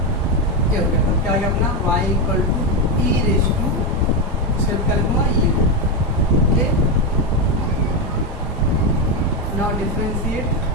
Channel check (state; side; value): normal; both; correlation 0.09